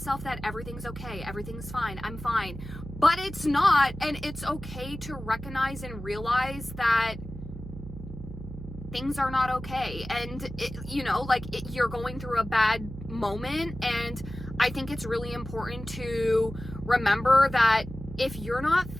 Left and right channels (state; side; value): noise; right; hum, 11 dB below the sound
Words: that everything's okay, everything's fine, I'm fine. But it's not, and it's okay to recognize and realize that things are not okay. And, you're going through a bad moment, and I think it's really important to remember that if you're not